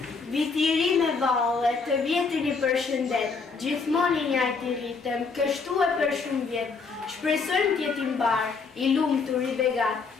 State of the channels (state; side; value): quieter; right; 4.8 dB